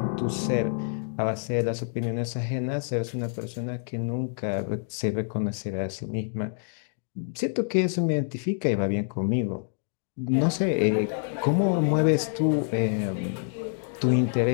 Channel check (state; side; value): silent; right; digital silence